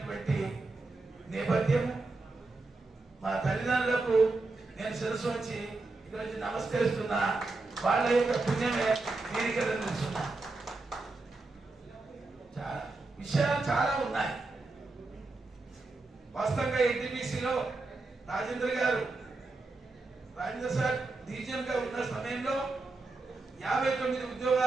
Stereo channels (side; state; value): left; quieter; 3.4 dB